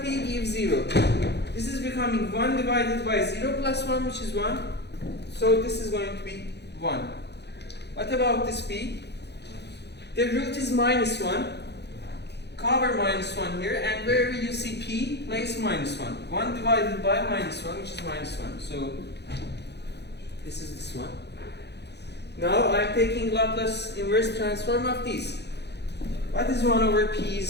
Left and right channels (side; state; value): right; late; 0.49 ms